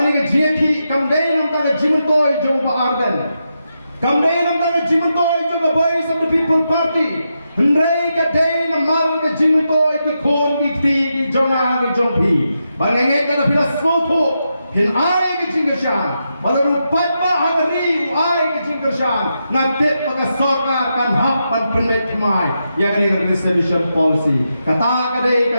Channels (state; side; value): inverted; both; correlation -0.86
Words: ke jeki kamdai nam ta jimun toy jong pa arden. Kamdai nam ta jimun toy jong ka voice of the people party. Hendrai ka dai nam mal ke jimun toy ki kon dikti ki jonga ki jongpi. Bangangai ka pila soto hin ai ke jingashan. Baru patba hari ai ke jingashan. Ngate pakai sarkar kan hak pan permit mai. Ya kani resolution policy. Kata kadai